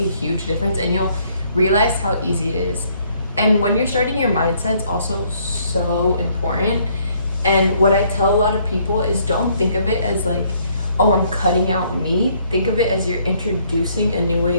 huge difference, and you'll realize how easy it is. And when you're starting, your mindset's also so important. And what I tell a lot of people is don't think of it as like, oh, I'm cutting out meat. Think of it as you're introducing a new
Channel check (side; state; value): both; inverted; correlation -0.66